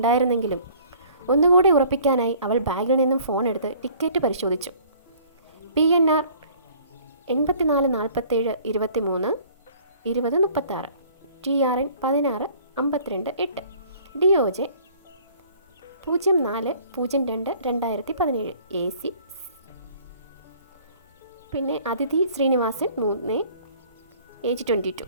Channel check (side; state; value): both; inverted; correlation -0.53